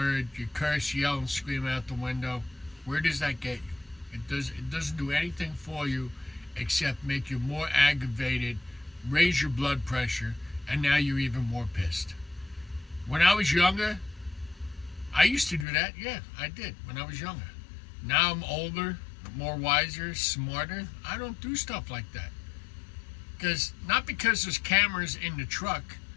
you curse, yell, and scream out the window, where does that get you? It doesn't do anything for you except make you more aggravated, raise your blood pressure, and now you're even more pissed. When I was younger, I used to do that. Yeah, I did when I was younger. Now I'm older, more wiser, smarter. I don't do stuff like that. Not because there's cameras in the truck,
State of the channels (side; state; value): right; drops out; at 15.7 s